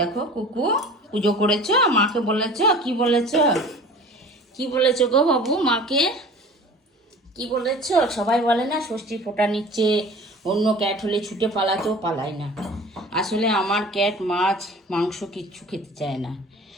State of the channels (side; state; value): both; normal; correlation 0.42